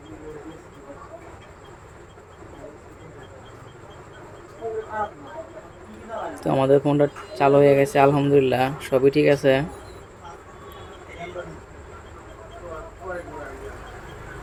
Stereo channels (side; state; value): both; identical; correlation 1.00